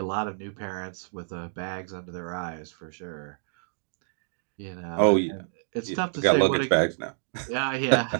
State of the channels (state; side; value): silent; left; digital silence